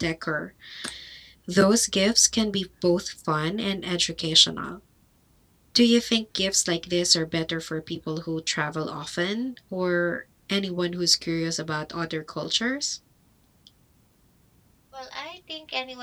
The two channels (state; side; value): identical; both; correlation 1.00